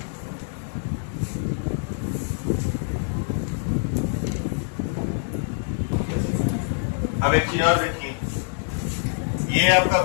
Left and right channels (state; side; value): silent; right; digital silence